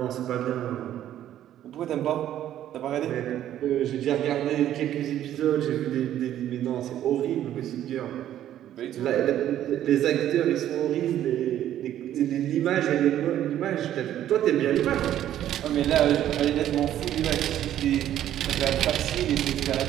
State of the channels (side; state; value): left; quieter; 11.7 dB